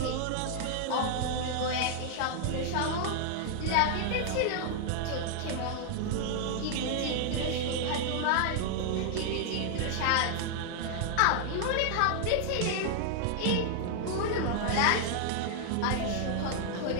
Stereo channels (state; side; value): different; both; correlation 0.00